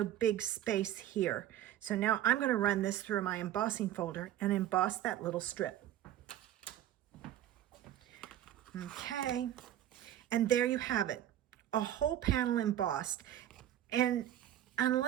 big space here. So now I'm going to run this through my embossing folder and emboss that little strip. Okay, and there you have it, a whole panel embossed. And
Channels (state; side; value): quieter; left; 12.1 dB